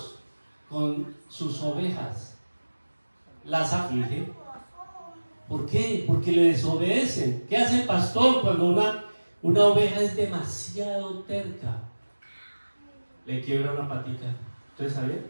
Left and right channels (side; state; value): both; inverted; correlation -1.00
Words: con sus ovejas? Las aflige. ¿Por qué? Porque le desobedecen. ¿Qué hace el pastor cuando una oveja es demasiado terca? Le quiebra una patica. ¿Ustedes sabían?